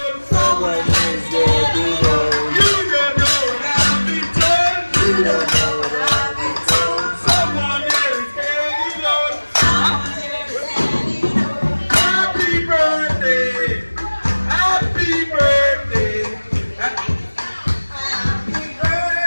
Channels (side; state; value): both; inverted; correlation -1.00